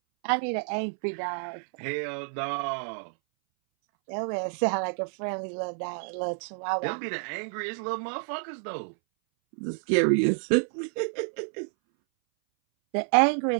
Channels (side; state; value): left; silent; 59 dB below the other